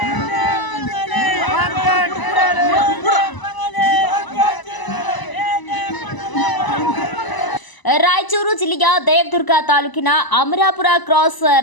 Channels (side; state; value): right; late; 1.0 ms